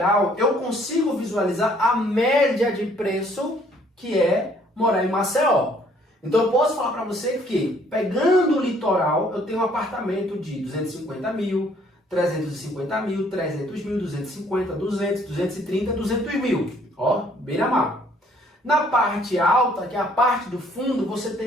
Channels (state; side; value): normal; both; correlation 0.62